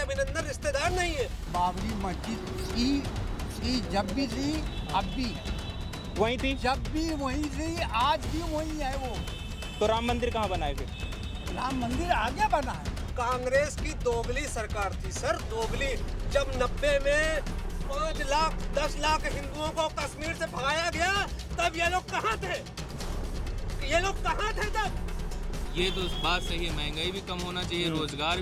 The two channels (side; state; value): both; identical; correlation 1.00